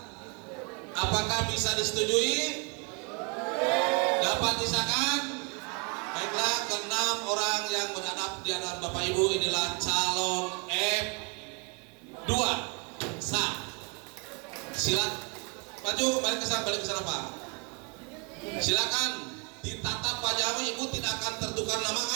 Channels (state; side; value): quieter; left; 33.9 dB